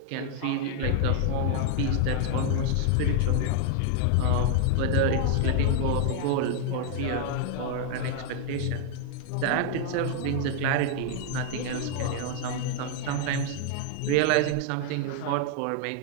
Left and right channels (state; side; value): different; both; correlation 0.00